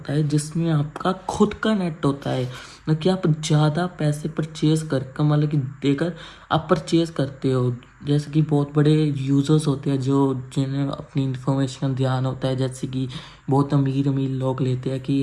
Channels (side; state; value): both; identical; correlation 1.00